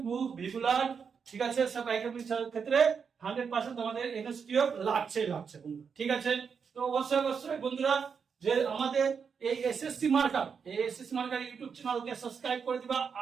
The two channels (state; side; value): quieter; left; 6.3 dB